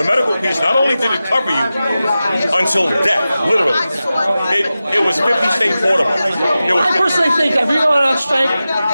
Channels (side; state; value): both; inverted; correlation -0.94